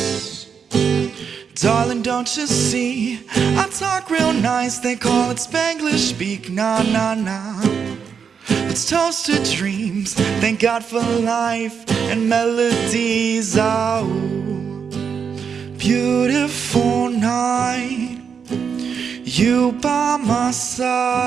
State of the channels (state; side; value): quieter; left; 6.6 dB